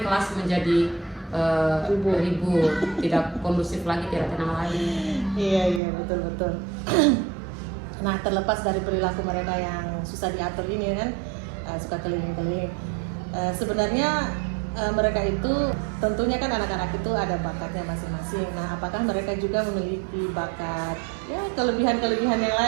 kelas menjadi ribut, tidak kondusif lagi, tidak tenang lagi. Iya betul. Nah, terlepas dari perilaku mereka yang susah diatur ini kan, suka keliling-keliling. Sebenarnya mereka itu tentunya kan anak-anak itu ada bakatnya masing-masing. Nah, apakah mereka juga memiliki bakat, ya kelebihan-kelebihan yang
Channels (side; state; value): left; drops out; at 5.8 s